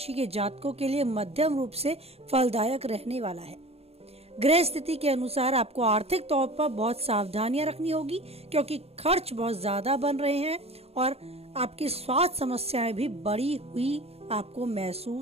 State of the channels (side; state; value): left; late; 0.29 ms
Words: के जातकों के लिए मध्यम रूप से फलदायक रहने वाला है। ग्रह स्थिति के अनुसार आपको आर्थिक तौर पर बहुत सावधानियां रखनी होगी, क्योंकि खर्च बहुत ज्यादा बन रहे हैं और आपकी स्वास्थ्य समस्याएं भी बढ़ी हुई आपको